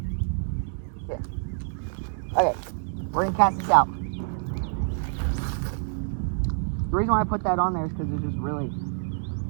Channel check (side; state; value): left; silent; digital silence